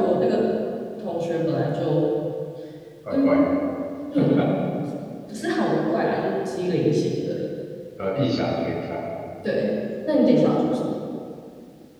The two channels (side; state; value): both; identical; correlation 1.00